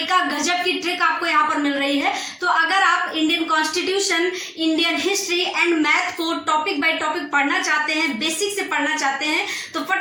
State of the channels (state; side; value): identical; both; correlation 1.00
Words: गजब की ट्रिक आपको यहाँ पर मिल रही है। तो अगर आप Indian constitution, Indian history and math को टॉपिक बाय टॉपिक पढ़ना चाहते हैं, बेसिक से पढ़ना चाहते हैं, तो